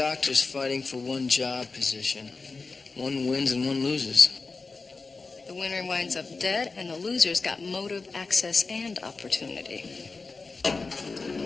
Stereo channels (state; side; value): quieter; right; 4.1 dB